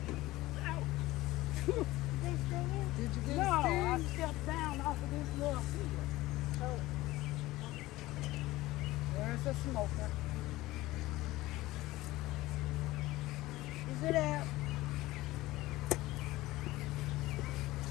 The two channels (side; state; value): right; quieter; 18.1 dB